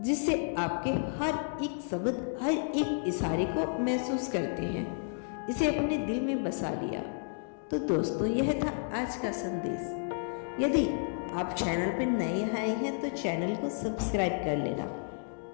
आपके हर एक शब्द, हर एक इशारे को महसूस करते हैं, इसे अपने दिल में बसा लिया। तो दोस्तों, यह था आज का संदेश। यदि आप चैनल पर नए आए हैं तो चैनल को सब्सक्राइब कर लेना।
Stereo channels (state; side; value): silent; right; digital silence